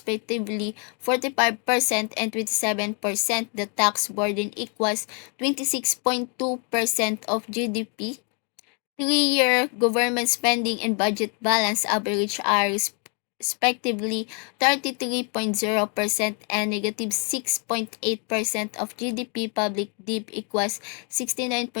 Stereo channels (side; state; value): right; quieter; 37.0 dB